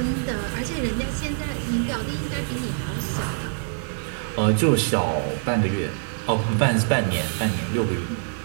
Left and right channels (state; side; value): silent; left; digital silence